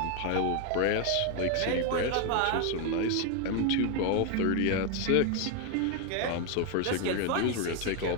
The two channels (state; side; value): different; both; correlation 0.01